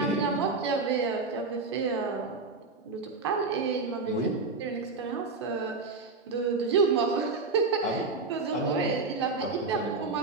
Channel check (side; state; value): left; quieter; 4.0 dB